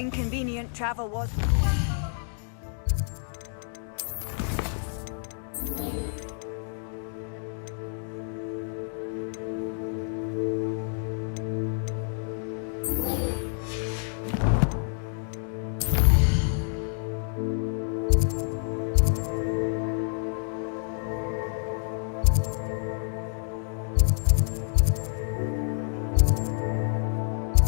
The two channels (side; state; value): right; silent; 59 dB below the other